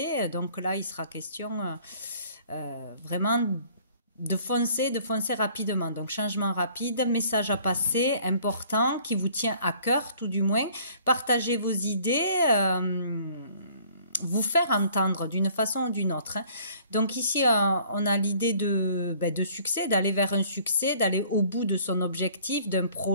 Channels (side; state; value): both; inverted; correlation -0.56